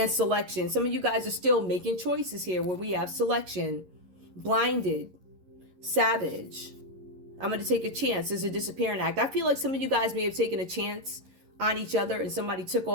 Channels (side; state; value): left; late; 11 ms